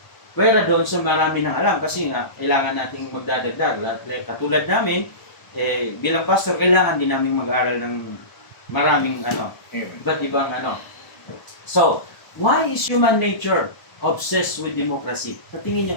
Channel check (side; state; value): right; late; 1.3 ms